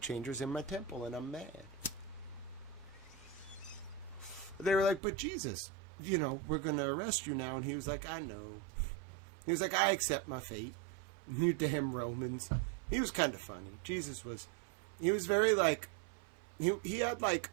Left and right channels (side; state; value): left; drops out; at 5.0 s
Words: in my temple, and I'm mad. They were like, but Jesus, we're going to arrest you now. And he was like, I know. He was like, I accept my fate. You damn Romans. He was kind of funny. Jesus was, he was very, like, he had, like,